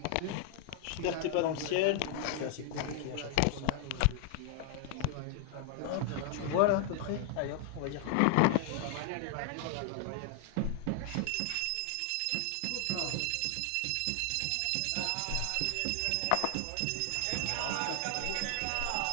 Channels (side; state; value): both; different; correlation 0.00